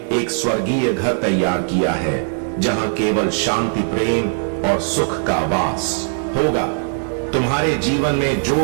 एक स्वर्गीय घर तैयार किया है जहां केवल शांति, प्रेम और सुख का वास होगा। तुम्हारे जीवन में जो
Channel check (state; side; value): silent; left; 66 dB below the other